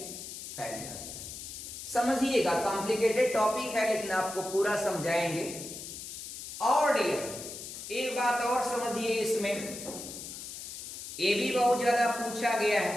फैल जाता है। समझिएगा, कॉम्प्लिकेटेड टॉपिक है लेकिन आपको पूरा समझाएंगे। और एक बात और समझिए, इसमें ये भी बहुत ज्यादा पूछा गया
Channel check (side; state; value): left; noise; hiss, 10 dB below the sound